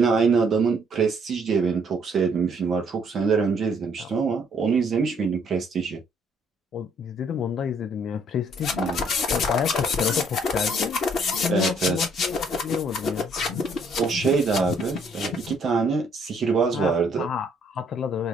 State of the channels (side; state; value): both; normal; correlation 0.66